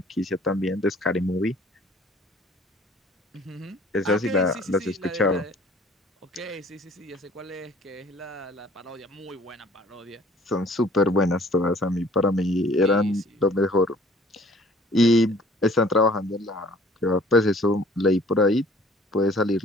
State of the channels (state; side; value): normal; both; correlation 0.54